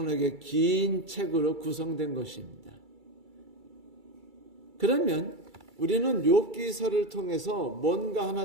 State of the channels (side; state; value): left; late; 2.3 ms